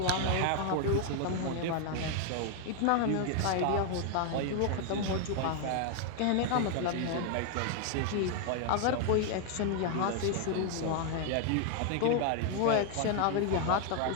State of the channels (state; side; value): different; both; correlation 0.00